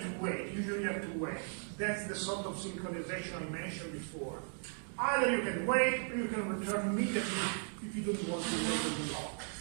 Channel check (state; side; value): silent; left; 53 dB below the other